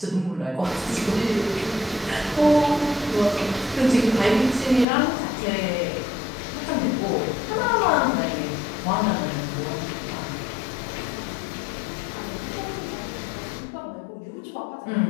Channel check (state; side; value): drops out; right; at 4.9 s